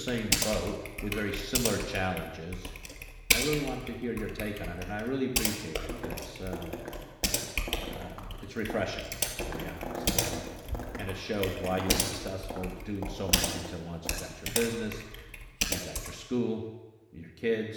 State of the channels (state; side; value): identical; both; correlation 1.00